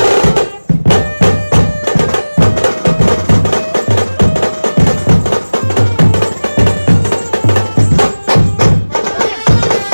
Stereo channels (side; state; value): both; inverted; correlation -1.00